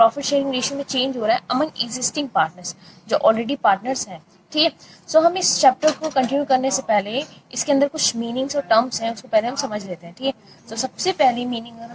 शेयरिंग रेशियो में चेंज हो रहा है अमंग एग्जिस्टिंग पार्टनर्स, जो ऑलरेडी पार्टनर्स हैं. ठीक है, सो हम इस चैप्टर को कंटिन्यू करने से पहले इसके अंदर कुछ मीनिंग्स और टर्म्स हैं, उसको पहले हम समझ लेते हैं. ठीक है, तो सबसे पहली मीनिंग अगर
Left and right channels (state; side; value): identical; both; correlation 1.00